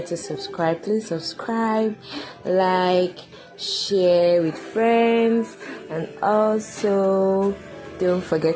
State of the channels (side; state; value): both; identical; correlation 1.00